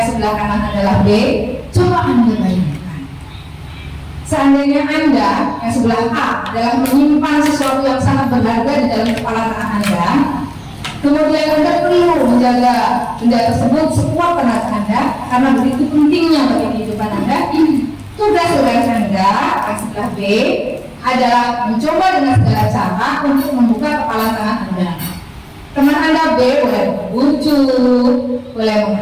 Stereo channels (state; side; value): identical; both; correlation 1.00